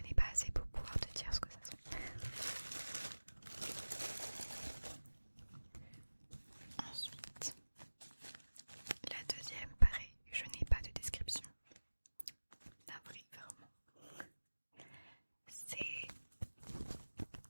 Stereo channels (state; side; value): inverted; both; correlation -1.00